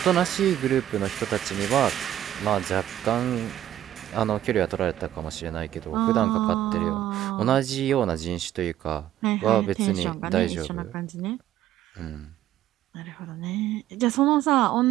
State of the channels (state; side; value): quieter; left; 12.4 dB